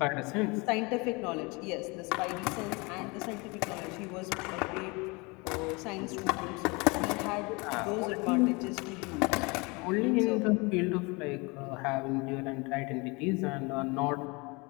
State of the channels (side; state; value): right; quieter; 27.4 dB